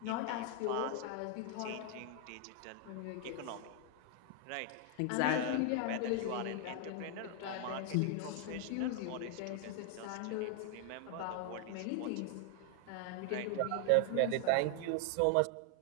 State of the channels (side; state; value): both; different; correlation 0.00